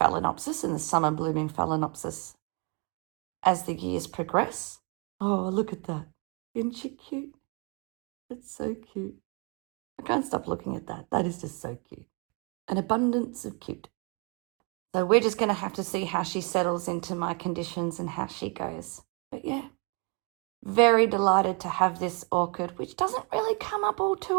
and the summer blooming Phalaenopsis as the years progress. Oh, look at that. Isn't she cute? It's so cute. I can't stop looking at that. That is just so cute. An abundance of cute. So we're just going to have to see how she settles into my conditions and how she goes. But yeah, very delighted to have this orchid, which doesn't really come up all too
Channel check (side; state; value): left; quieter; 31.8 dB